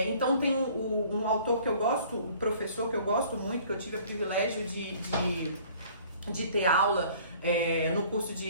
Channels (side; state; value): both; inverted; correlation -0.53